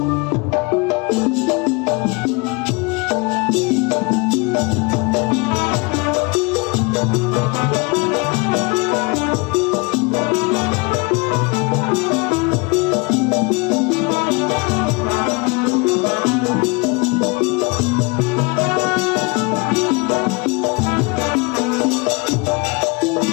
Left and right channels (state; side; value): quieter; right; 28.3 dB